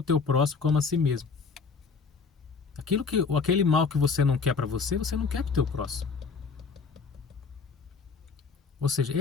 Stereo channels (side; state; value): right; quieter; 5.1 dB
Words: teu próximo como a si mesmo. Aquele mal que você não quer para você não quer para o teu próximo. Ou seja,